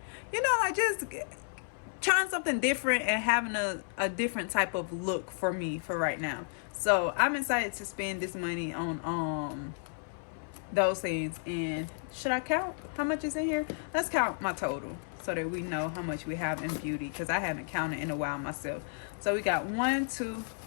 you know, like just trying something different and having a different type of look for me for right now. So I'm excited to spend this money on those things. And should I count how much is in here? Let's count my total so that we know how much we have in beauty, because I haven't counted in a while myself. So we got 1, 2,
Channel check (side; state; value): right; silent; 56 dB below the other